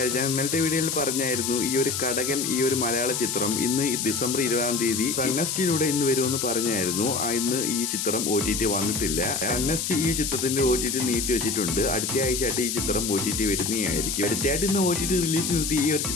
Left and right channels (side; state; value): left; noise; hiss, 2 dB below the sound